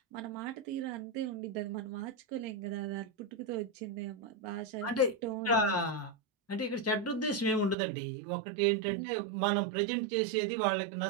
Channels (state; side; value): drops out; left; at 7.8 s